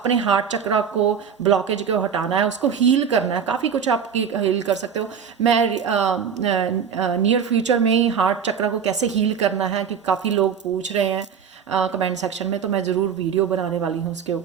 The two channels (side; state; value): left; quieter; 7.2 dB